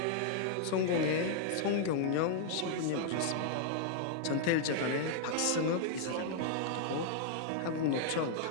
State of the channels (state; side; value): different; both; correlation 0.00